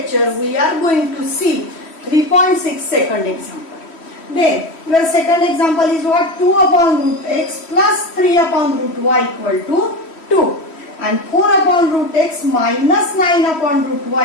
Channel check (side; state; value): right; late; 3.1 ms